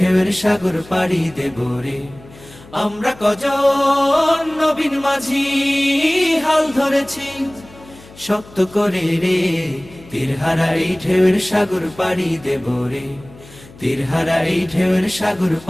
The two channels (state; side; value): noise; left; hum, 22 dB below the sound